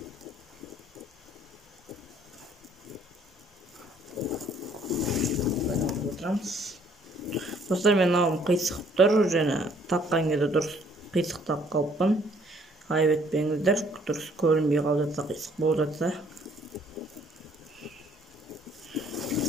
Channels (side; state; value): both; normal; correlation 0.62